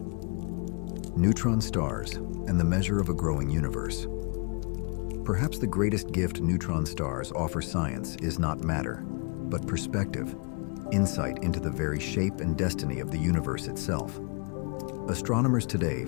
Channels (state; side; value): quieter; right; 35.9 dB